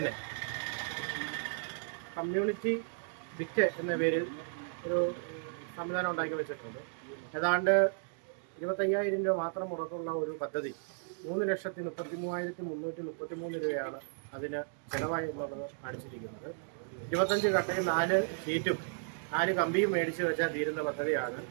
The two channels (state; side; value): silent; left; digital silence